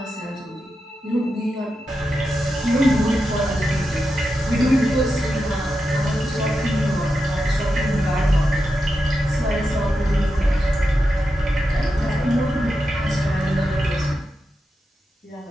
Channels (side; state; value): both; normal; correlation 0.88